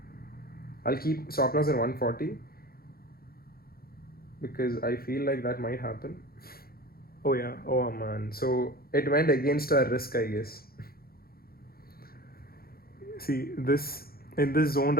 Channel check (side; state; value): right; late; 0.44 ms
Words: I'll keep stop loss at 140 because I feel like that might happen. Oh yeah, oh man. So it went against our risk, I guess. See, this in this zone